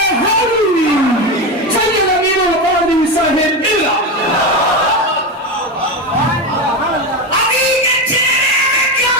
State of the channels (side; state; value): both; normal; correlation 0.16